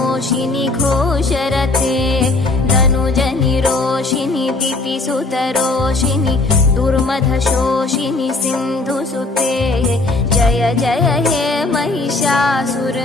घोषरते धनुजनिरोषिनि दितिसुतरोषिनि दुर्मधशोषिनि सिन्धुसुते जय जय हे महिषासुरमर्दिनि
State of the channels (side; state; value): right; quieter; 3.2 dB